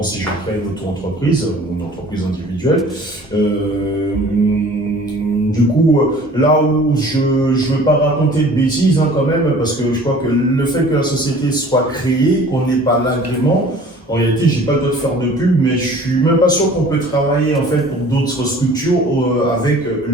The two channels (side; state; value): both; normal; correlation 0.48